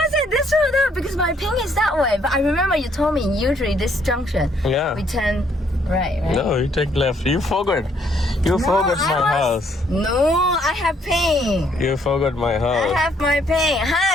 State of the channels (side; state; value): both; normal; correlation 0.68